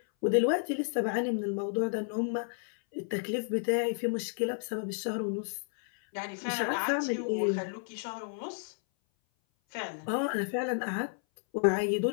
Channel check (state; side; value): silent; right; 57 dB below the other